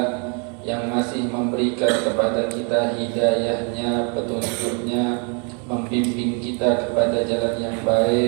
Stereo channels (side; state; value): left; quieter; 37.0 dB